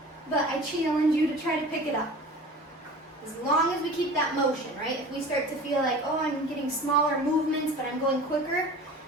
but I challenge you to try to pick it up. As long as we keep that motion, right? If we start to feel like, oh, I'm getting smaller movements, but I'm going quicker,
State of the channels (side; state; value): both; normal; correlation 0.39